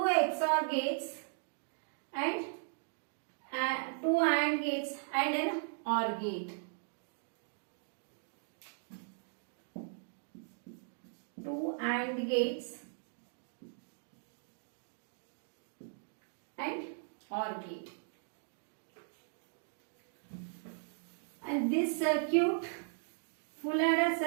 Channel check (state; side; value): silent; left; digital silence